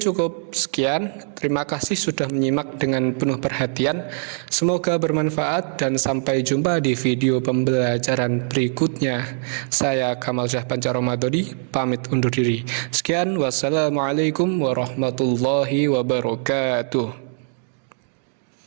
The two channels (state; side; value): silent; left; digital silence